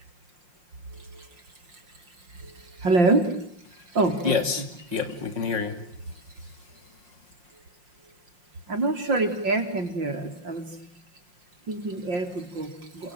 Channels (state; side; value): late; left; 5.5 ms